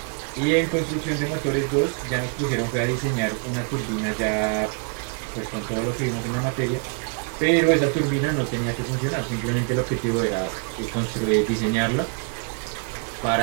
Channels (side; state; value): left; quieter; 39.6 dB